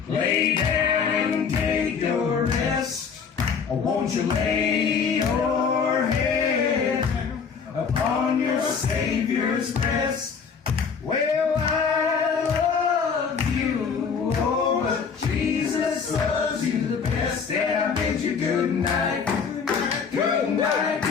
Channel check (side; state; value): right; quieter; 6.1 dB